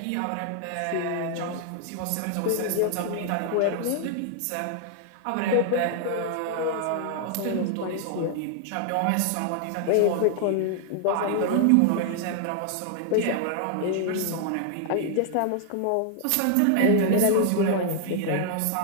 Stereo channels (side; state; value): both; different; correlation 0.00